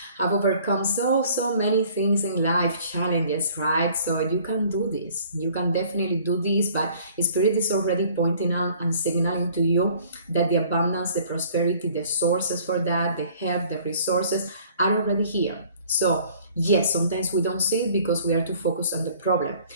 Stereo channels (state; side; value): inverted; both; correlation -0.54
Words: have overcome so many things in life, challenges, right? So you can do this. You can definitely do this, but spirit is already pointing out and signaling to you that the abundance, the prosperity, the sources for that, the help, the resources are already here. So yes, sometimes we don't see it because we are too focused on the problem.